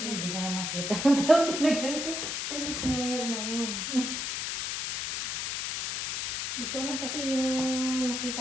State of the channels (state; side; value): noise; left; hiss, 2 dB below the sound